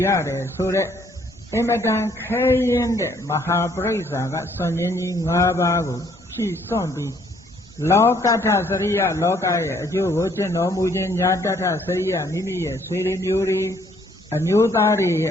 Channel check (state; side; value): normal; both; correlation 0.65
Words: ရတယ်ဆိုတဲ့အမတန်ခဲရင်တဲ့မဟာပရိစ္ဆာကစွန့်ရင်းကြီး၅ပါးကိုရှိစွန့်သူလောကထစရိယလောကရဲ့အကျိုးကိုကျင့်တော်မူခြင်းညာတထစရိယမိမိရဲ့ဆွေတွေမျိုးတွေအမျိုးသားတွေရဲ